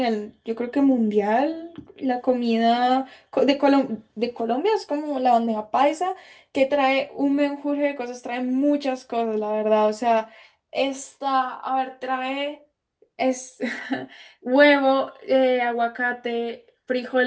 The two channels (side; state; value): both; identical; correlation 1.00